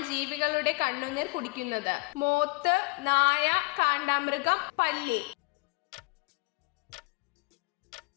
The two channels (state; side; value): quieter; right; 28.0 dB